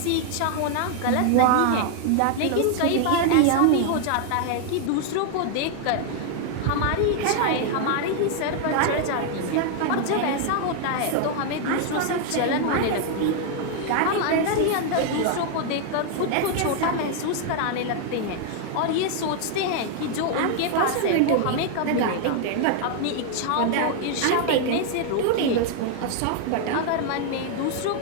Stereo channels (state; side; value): different; both; correlation 0.00